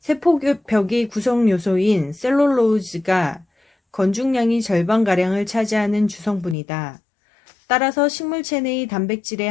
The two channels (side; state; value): right; drops out; at 6.6 s